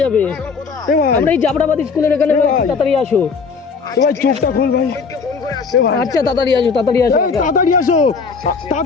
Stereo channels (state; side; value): quieter; right; 5.2 dB